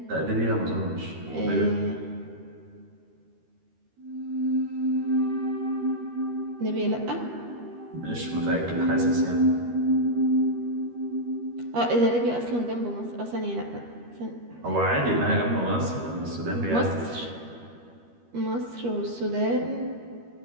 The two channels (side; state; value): left; late; 13 ms